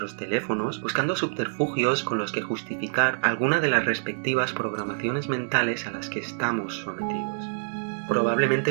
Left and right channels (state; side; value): silent; left; digital silence